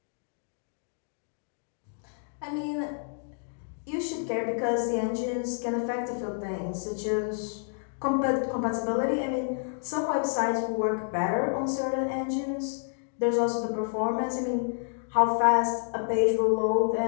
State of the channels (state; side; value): silent; right; digital silence